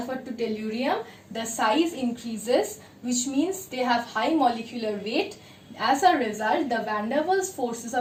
to tellurium, the size increases, which means they have high molecular weight. As a result, the van der Waals forces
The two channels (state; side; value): identical; both; correlation 1.00